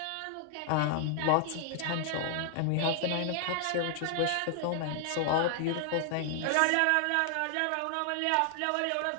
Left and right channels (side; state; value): both; different; correlation 0.00